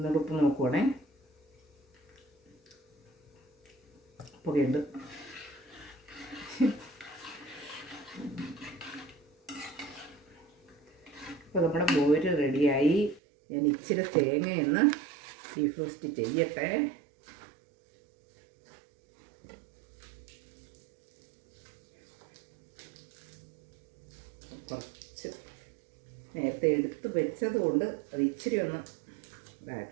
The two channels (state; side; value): drops out; left; at 13.2 s